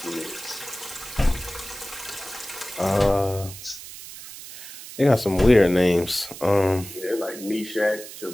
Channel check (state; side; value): noise; right; hiss, 13 dB below the sound